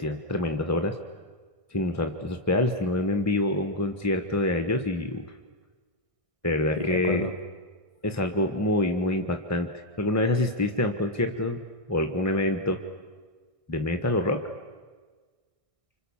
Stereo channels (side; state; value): left; late; 1.6 ms